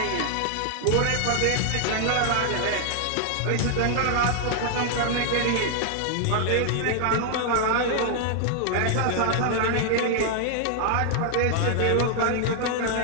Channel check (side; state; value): both; different; correlation 0.00